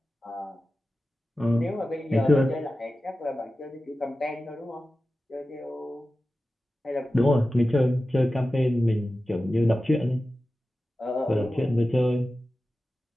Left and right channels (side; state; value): both; normal; correlation 0.94